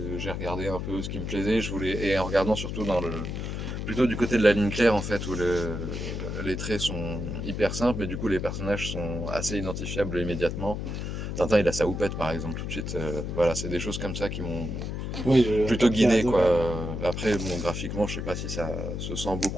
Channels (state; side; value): noise; left; hum, 4 dB below the sound